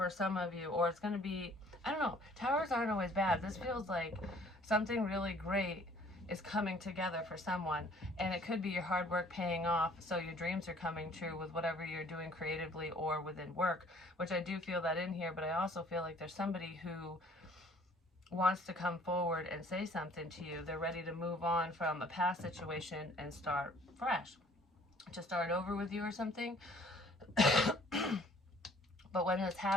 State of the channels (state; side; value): normal; both; correlation 0.56